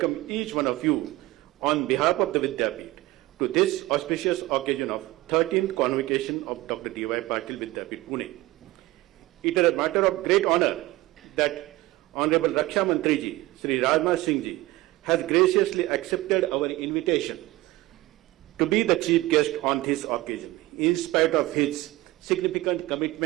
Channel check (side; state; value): left; quieter; 18.7 dB